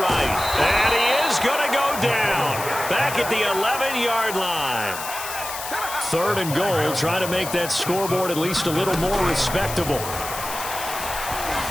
And he is going to go down. Back at the 11-yard line. 3rd and goal, trying to make that scoreboard at least a little more respectable.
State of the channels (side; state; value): left; noise; hiss, 8 dB below the sound